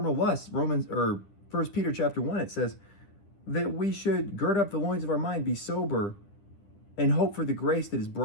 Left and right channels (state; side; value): late; right; 10 ms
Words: lusts. 1 Peter chapter 1, it says that we should gird up the loins of our mind, be sober, and hope for the grace that is